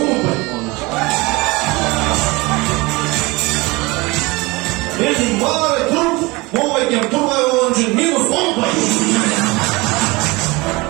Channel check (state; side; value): quieter; left; 23.7 dB